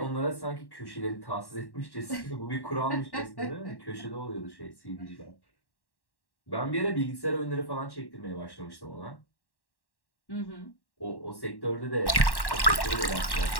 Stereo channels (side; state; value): right; late; 1.1 ms